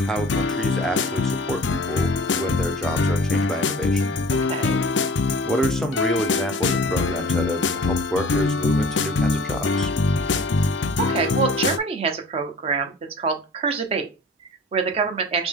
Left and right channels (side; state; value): both; normal; correlation 0.44